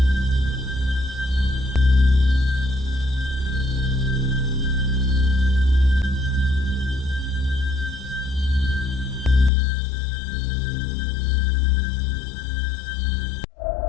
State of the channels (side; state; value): right; drops out; at 9.5 s